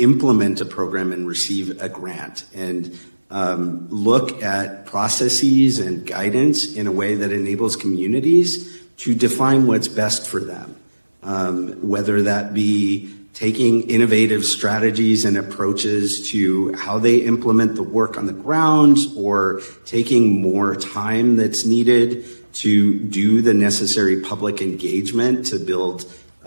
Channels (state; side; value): inverted; both; correlation -1.00